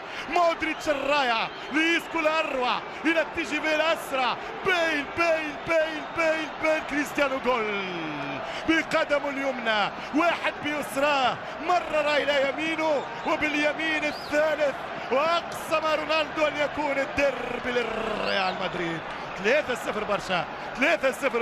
مودريتش الرايع ليسكو الأروع إلى التجربة الأسرع، بيل كريستيانو جول بقدمه اليمنى، واحد بيسراه، مرر إلى يمينه وباليمين الثالث، وأقسم رونالدو أن يكون الدرب للريال مدريد. 3-0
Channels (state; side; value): identical; both; correlation 1.00